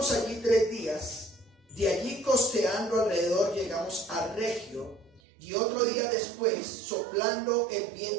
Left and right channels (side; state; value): left; drops out; at 5.2 s